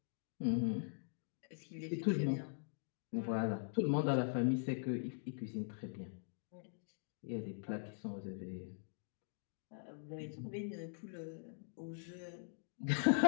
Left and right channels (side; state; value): right; silent; digital silence